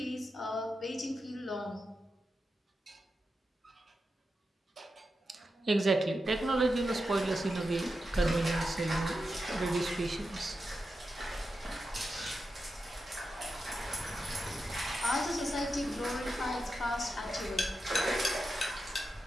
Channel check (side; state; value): both; normal; correlation 0.89